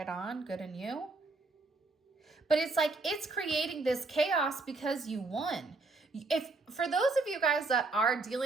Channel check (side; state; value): left; quieter; 3.5 dB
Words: on. Good on you. But it's like it's creating this chaos because you won. If for those of you guys that are